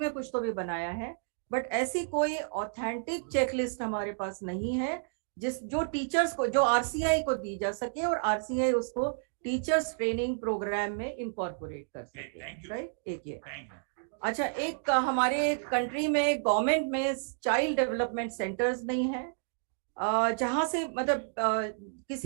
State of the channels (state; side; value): silent; left; digital silence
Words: कुछ तो भी बनाया है, बट ऐसी कोई ऑथेंटिक चेकलिस्ट हमारे पास नहीं है जो टीचर्स को, जो RCI को दी जा सके और RCI उसको टीचर्स ट्रेनिंग प्रोग्राम में इंकॉर्पोरेट कर सके। राइट, एक ये। अच्छा, एक हमारे कंट्री में गवर्नमेंट में चाइल्ड डेवलपमेंट सेंटर्स नहीं है, जहाँ से मतलब